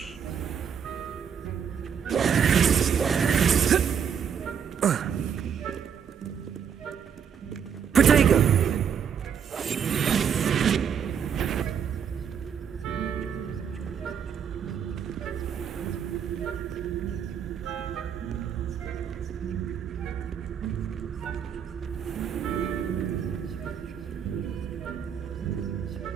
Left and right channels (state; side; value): quieter; left; 7.6 dB